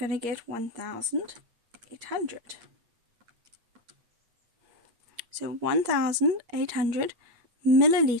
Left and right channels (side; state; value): left; late; 8.5 ms